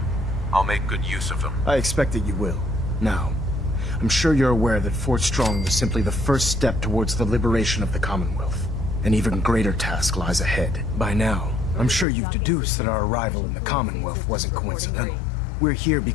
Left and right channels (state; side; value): drops out; right; at 12.1 s